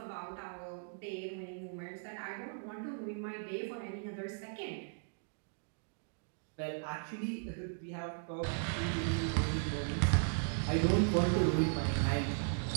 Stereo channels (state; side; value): silent; left; digital silence